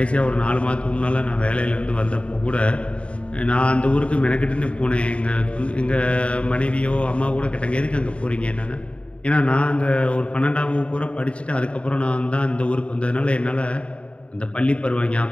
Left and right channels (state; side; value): late; right; 0.061 ms